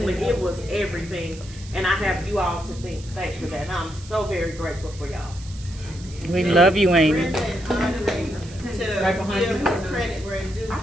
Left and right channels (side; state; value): right; noise; hiss, 19 dB below the sound